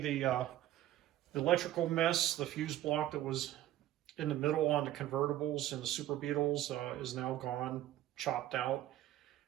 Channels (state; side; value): quieter; left; 13.6 dB